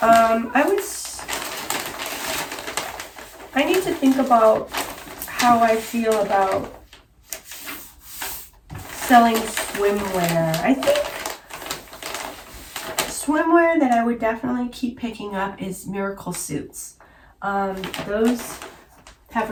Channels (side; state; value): both; identical; correlation 1.00